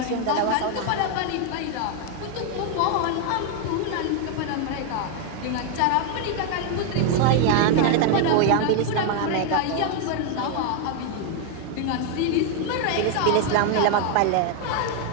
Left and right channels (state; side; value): different; both; correlation 0.00